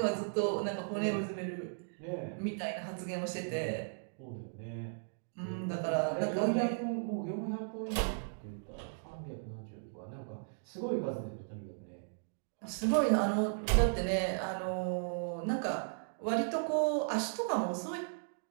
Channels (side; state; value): left; silent; digital silence